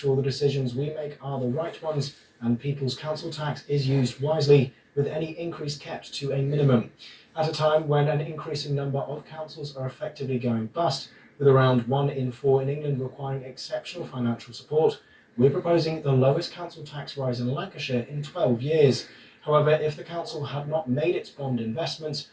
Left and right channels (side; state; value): both; identical; correlation 1.00